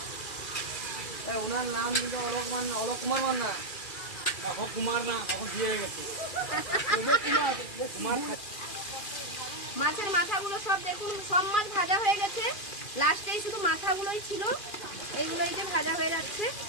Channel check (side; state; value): right; late; 2.4 ms